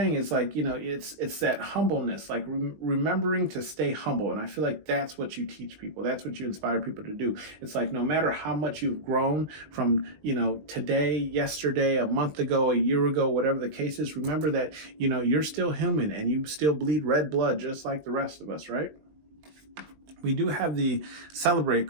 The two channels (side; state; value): left; late; 20 ms